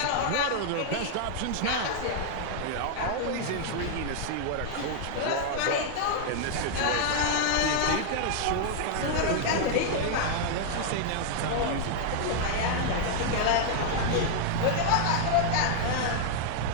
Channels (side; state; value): both; different; correlation 0.00